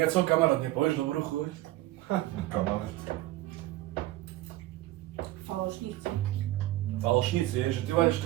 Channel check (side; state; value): left; quieter; 16.4 dB